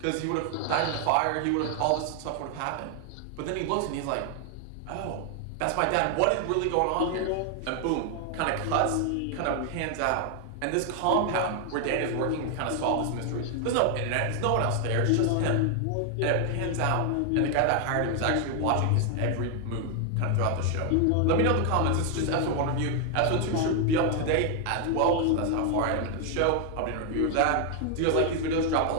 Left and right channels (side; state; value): both; different; correlation 0.00